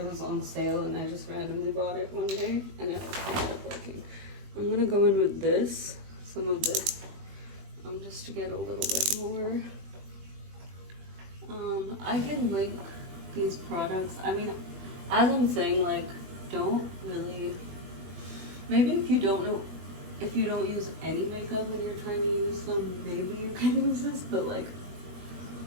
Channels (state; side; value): late; left; 21 ms